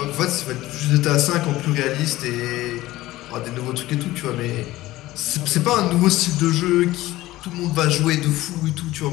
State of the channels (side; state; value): right; quieter; 17.0 dB